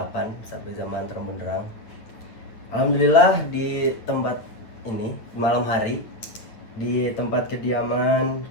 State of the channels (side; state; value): right; late; 8.9 ms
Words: sampai zaman terang benderang. Alhamdulillah di tempat ini malam hari di tempat kediaman